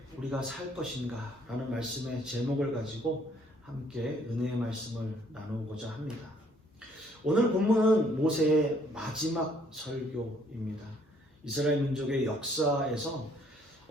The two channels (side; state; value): both; normal; correlation 0.64